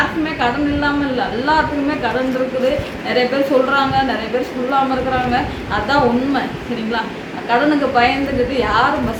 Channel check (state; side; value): identical; both; correlation 1.00